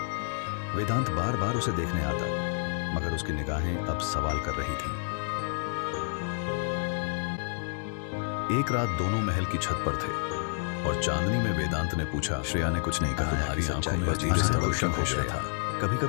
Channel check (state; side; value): silent; right; 58 dB below the other